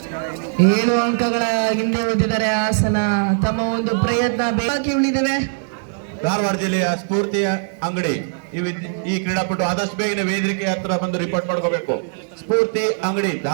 ಏಳು ಅಂಕಗಳ ಹಿಂದೆ ಉಳಿದಿದ್ದಾರೆ ಹಾಸನ. ತಮ್ಮ ಒಂದು ಪ್ರಯತ್ನ ಬಾಕಿ ಉಳಿದಿವೆ. ಧಾರವಾಡ ಜಿಲ್ಲೆಯ ಸ್ಫೂರ್ತಿ ಅಂಗಡಿ ಈ ಕ್ರೀಡಾಪಟು ಆದಷ್ಟು ಬೇಗನೆ ವೇದಿಕೆ ಹತ್ರ ಬಂದು ರಿಪೋರ್ಟ್ ಮಾಡ್ಕೋಬೇಕು. ಸ್ಫೂರ್ತಿ ಅಂಗಡಿ,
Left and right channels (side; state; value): left; silent; digital silence